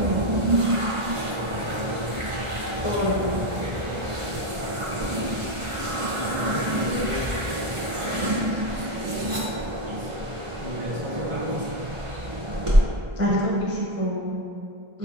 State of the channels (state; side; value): late; left; 1.4 ms